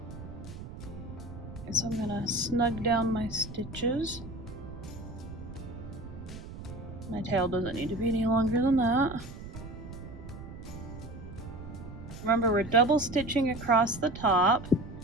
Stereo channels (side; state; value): right; noise; rumble, 12 dB below the sound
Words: So I'm gonna snug down my stitches. My tail doesn't need to be any longer than that. Remember, we're double stitching across the top